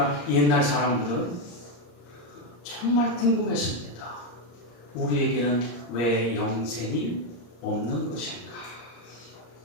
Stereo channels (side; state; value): right; late; 34 ms